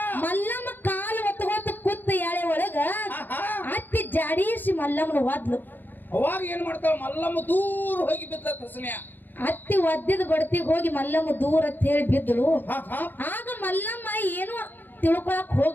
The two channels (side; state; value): right; late; 0.090 ms